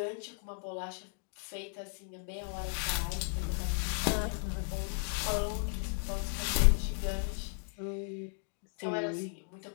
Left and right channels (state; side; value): silent; right; 54 dB below the other